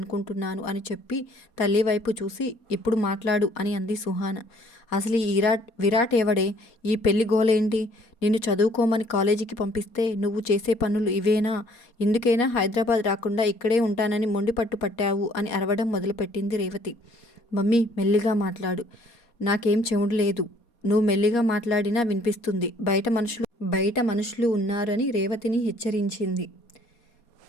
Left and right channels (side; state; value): right; late; 4.2 ms